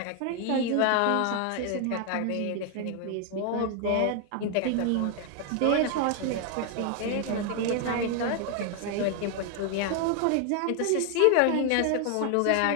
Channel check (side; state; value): both; different; correlation 0.01